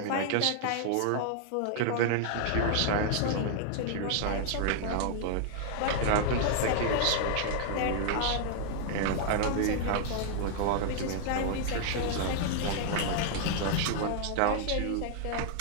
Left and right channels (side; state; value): both; different; correlation 0.00